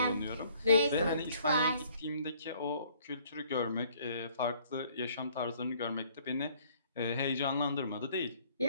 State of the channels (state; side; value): inverted; both; correlation -0.60